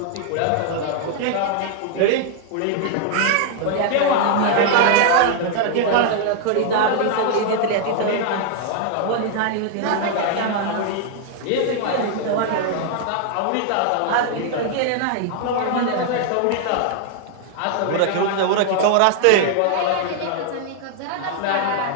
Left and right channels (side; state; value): both; different; correlation 0.00